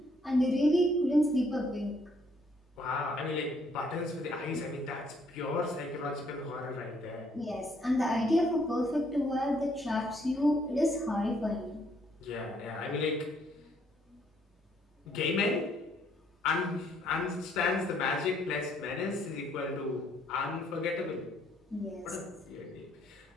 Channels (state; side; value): normal; both; correlation 0.68